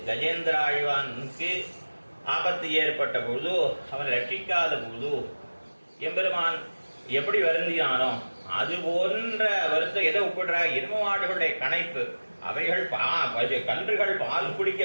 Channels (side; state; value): both; inverted; correlation -1.00